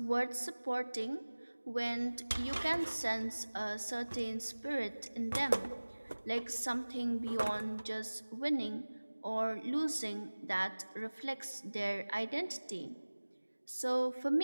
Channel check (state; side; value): inverted; both; correlation -1.00